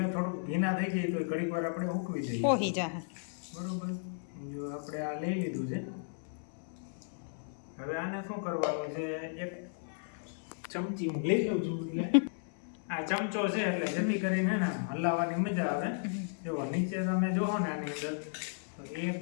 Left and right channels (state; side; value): silent; right; 55 dB below the other